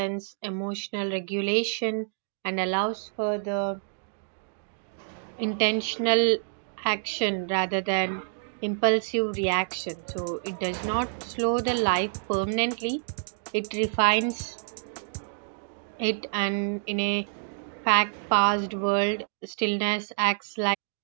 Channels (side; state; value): left; silent; digital silence